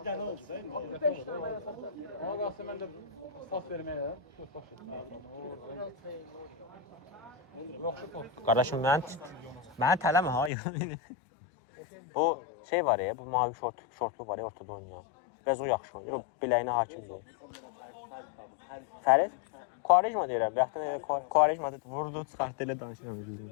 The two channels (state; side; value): drops out; right; at 10.5 s